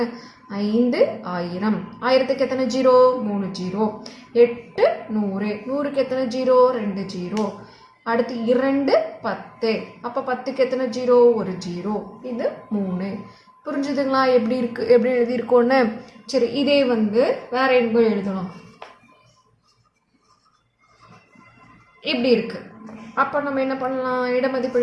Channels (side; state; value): both; identical; correlation 1.00